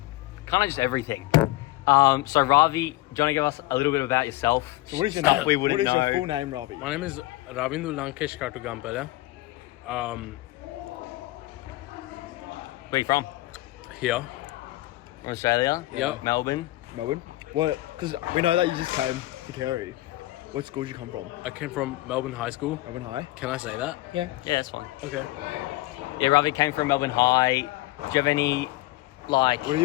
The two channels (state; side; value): quieter; right; 18.4 dB